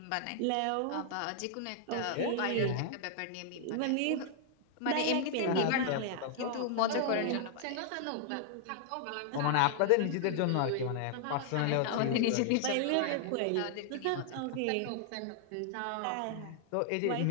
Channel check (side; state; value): both; different; correlation -0.01